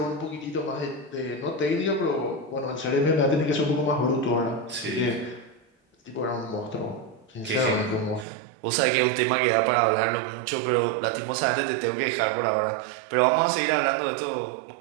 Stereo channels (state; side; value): drops out; left; at 8.2 s